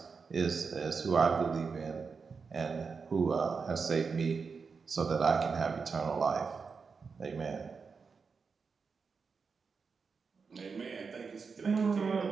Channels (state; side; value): quieter; left; 5.2 dB